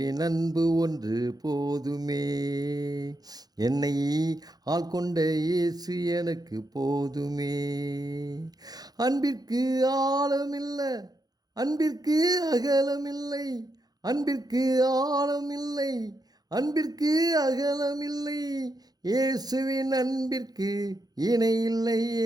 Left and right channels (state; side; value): late; left; 0.19 ms